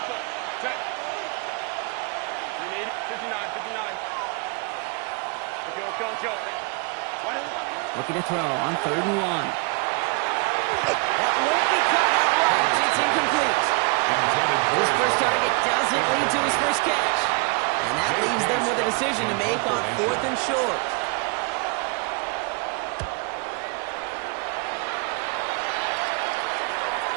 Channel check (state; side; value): quieter; left; 32.9 dB